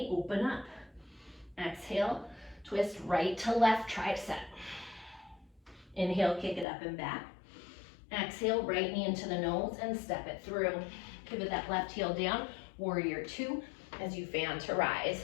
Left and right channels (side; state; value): right; drops out; at 6.7 s